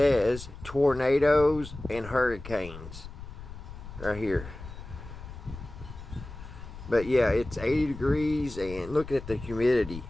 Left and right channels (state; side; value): noise; left; rumble, 13 dB below the sound